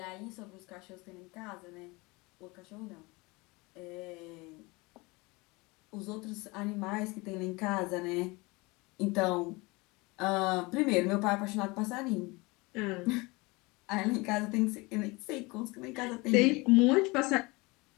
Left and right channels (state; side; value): quieter; right; 24.6 dB